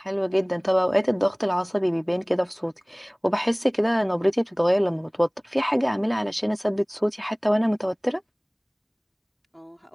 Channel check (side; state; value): both; identical; correlation 1.00